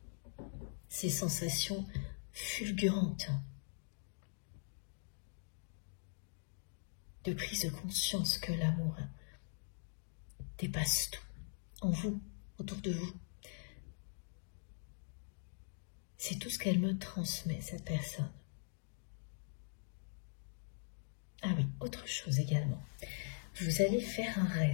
Ces sensations fulgurantes de prise de conscience que l'amour dépasse tout, en vous, autour de vous. C'est tout ce qu'elle me transmet, cette personne. Ah oui, autre chose également. Vous allez faire un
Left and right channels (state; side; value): silent; right; digital silence